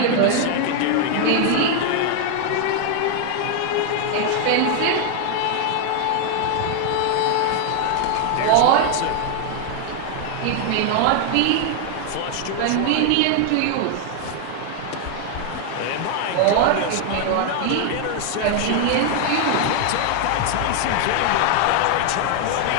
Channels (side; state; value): both; different; correlation 0.00